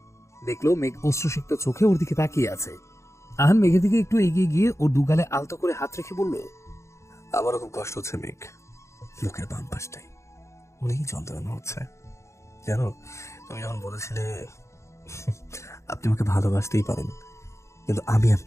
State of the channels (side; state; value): right; late; 0.14 ms